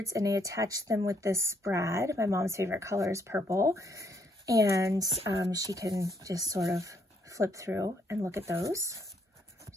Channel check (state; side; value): normal; both; correlation 0.71